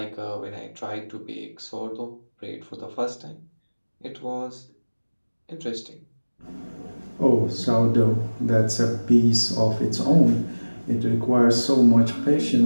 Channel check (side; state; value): both; inverted; correlation -1.00